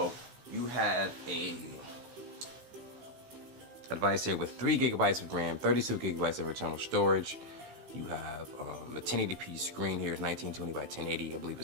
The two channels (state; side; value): late; left; 15 ms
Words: you have a device here with 3 gigabytes of RAM, 32 gigabytes of internal storage. You have a 1080p screen here, 1920 by 1080. I believe